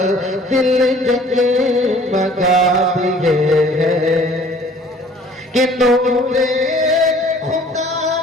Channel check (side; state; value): both; normal; correlation 0.53